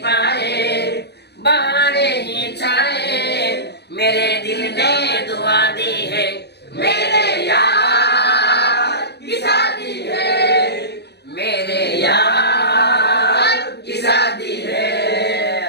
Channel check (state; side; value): late; right; 0.48 ms